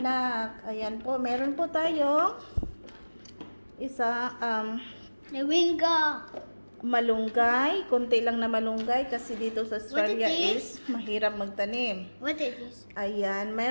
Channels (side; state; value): both; inverted; correlation -1.00